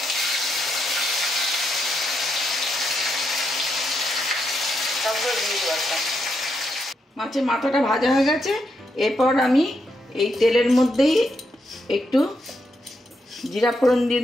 মাছের মাথাটা ভাজা হয়ে গেছে। এরপর আমি এই তেলের মধ্যেই একটু জিরা ফোড়ন দিয়ে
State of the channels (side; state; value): both; normal; correlation 0.81